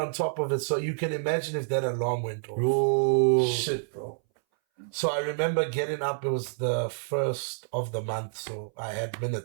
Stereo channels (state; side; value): silent; left; 59 dB below the other